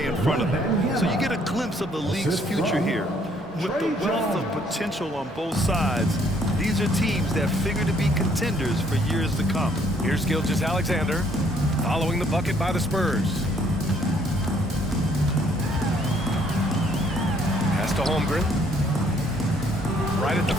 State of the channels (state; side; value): normal; both; correlation 0.65